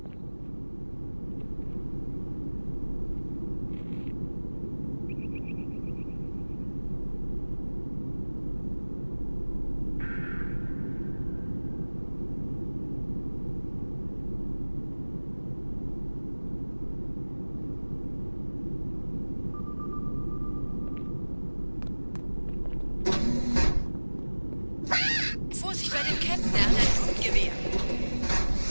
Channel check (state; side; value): inverted; both; correlation -1.00